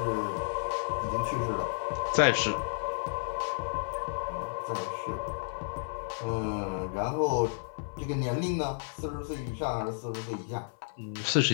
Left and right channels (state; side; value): silent; right; 57 dB below the other